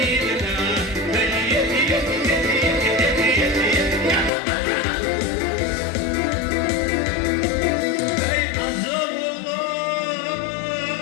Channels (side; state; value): right; drops out; at 4.3 s